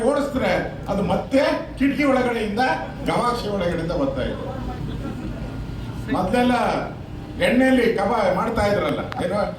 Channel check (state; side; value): identical; both; correlation 1.00